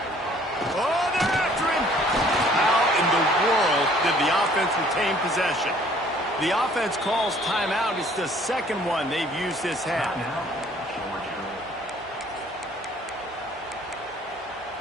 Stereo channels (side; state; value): both; normal; correlation 0.57